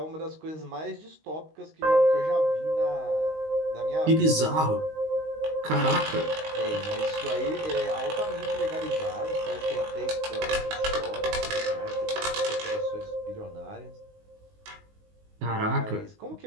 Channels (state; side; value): late; left; 19 ms